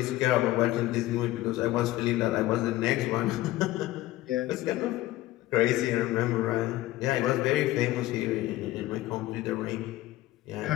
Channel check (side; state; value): right; quieter; 16.6 dB